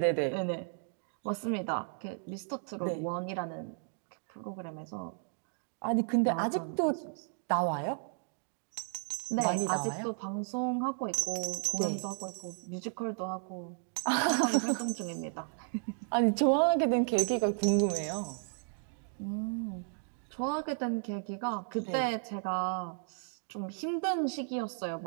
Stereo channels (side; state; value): left; silent; 55 dB below the other